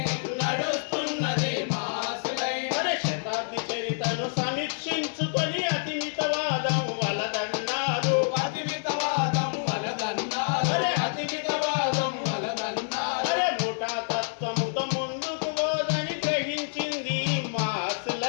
నడుస్తున్నది మాసులైన్. శతాబ్ది చరితను సమీక్షించుకొని అతిమితవాదం వలదన్నారు, అతిమితవాదం వలదన్నారు, అతిమితవాదం వలదన్నారు. ముఠా తత్వముతో ముందుకు పోదని గ్రహించింది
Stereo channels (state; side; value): silent; right; digital silence